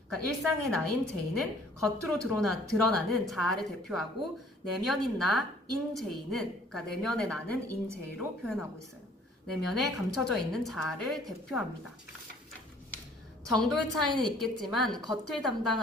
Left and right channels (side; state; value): both; normal; correlation 0.57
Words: 그러니까 일상의 나인 제이는 겉으로 드러나는 자아를 대표하고 내면인 나인 제이는 그러니까 내면의 나는 인 제이로 표현하고 있어요. 내면에 감춰져 있는 자아를 대표합니다. 정도의 차이는 있겠지만 겉을